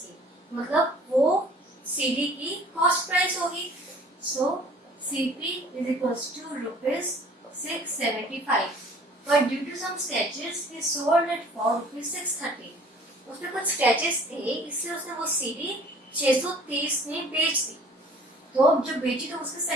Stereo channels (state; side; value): normal; both; correlation 0.51